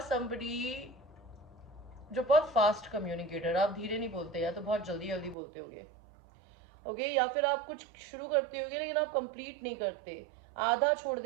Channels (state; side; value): drops out; left; at 5.4 s